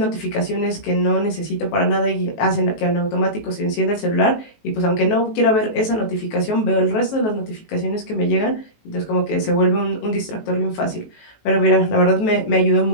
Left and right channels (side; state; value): right; late; 18 ms